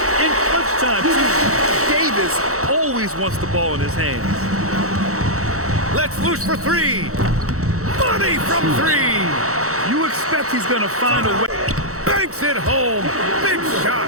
in clutch time, too. Davis always wants the ball in his hands. Let's loose for 3. Money from 3. You expect he's going to find a way. Banks it home. Big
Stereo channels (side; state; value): left; late; 0.64 ms